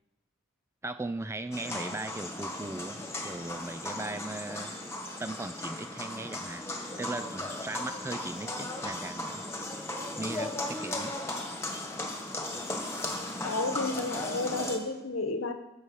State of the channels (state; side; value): normal; both; correlation 0.31